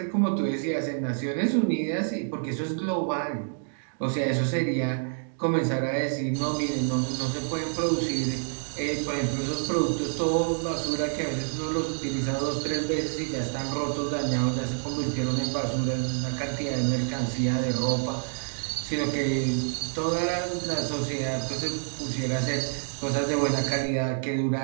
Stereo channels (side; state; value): left; silent; digital silence